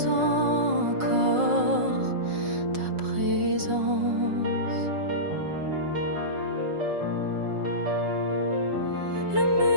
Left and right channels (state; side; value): late; left; 5.5 ms